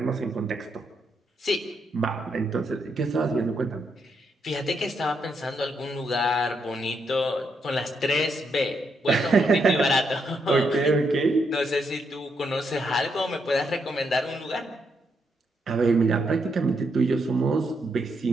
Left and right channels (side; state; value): both; normal; correlation 0.79